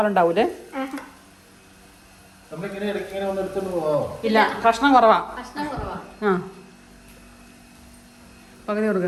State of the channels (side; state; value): both; identical; correlation 1.00